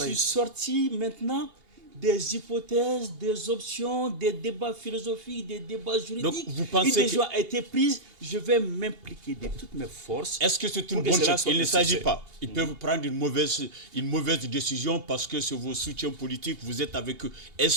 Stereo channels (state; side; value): late; left; 2.5 ms